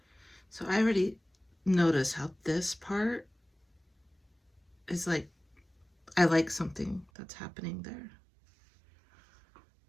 So I already noticed how this part is like, I like something that's happening there.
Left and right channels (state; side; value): drops out; left; at 7.1 s